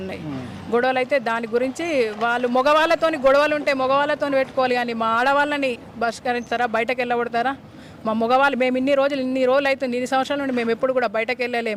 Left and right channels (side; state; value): both; identical; correlation 1.00